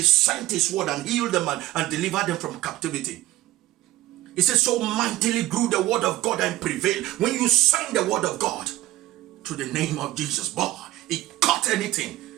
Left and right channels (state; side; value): quieter; left; 16.0 dB